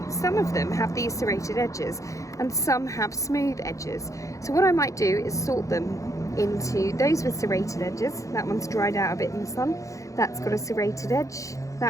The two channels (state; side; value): late; right; 0.15 ms